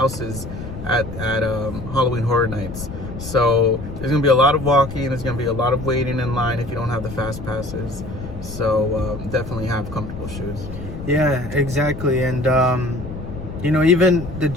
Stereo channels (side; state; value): left; noise; rumble, 10 dB below the sound